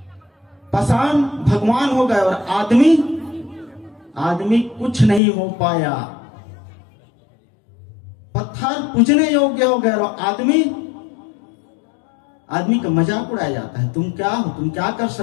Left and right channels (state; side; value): drops out; right; at 5.2 s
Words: पाषाण भगवान हो गए और आदमी कुछ नहीं हो पाया। पत्थर पूजने योग्य हो गए और आदमी का मजाक उड़ाया जाता है। तुम क्या हो, तुम क्या कर